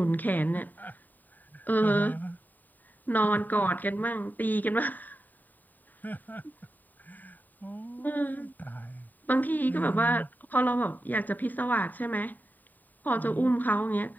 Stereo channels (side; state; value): right; late; 0.087 ms